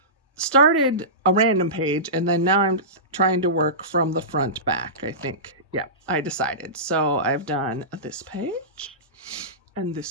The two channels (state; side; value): normal; both; correlation -0.20